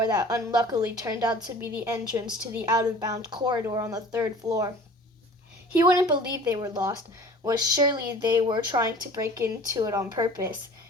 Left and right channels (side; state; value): both; normal; correlation 0.45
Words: that unluckily turned out to be the entrance to the out-of-bounds corridor on the 3rd floor. He wouldn't believe they were lost, was surely they were trying to break into it on purpose,